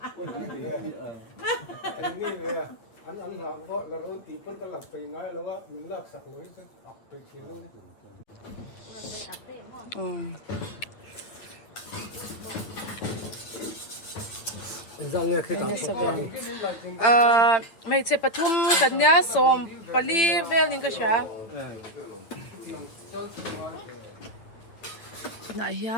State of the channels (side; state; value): right; late; 8.8 ms